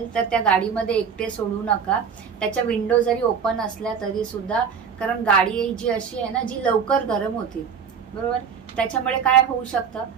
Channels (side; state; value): left; quieter; 6.8 dB